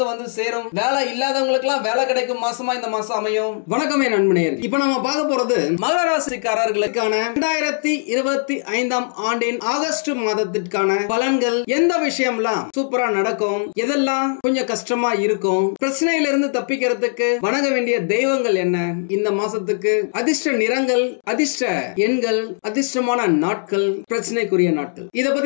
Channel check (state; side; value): silent; right; digital silence